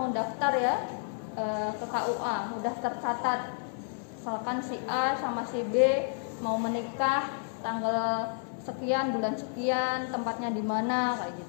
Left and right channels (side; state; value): right; silent; digital silence